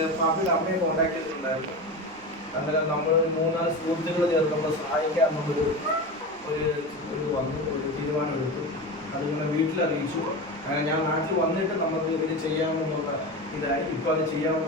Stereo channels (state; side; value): noise; right; rumble, 26 dB below the sound